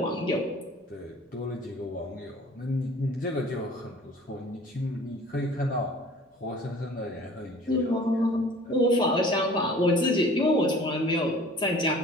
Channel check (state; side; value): normal; both; correlation 0.47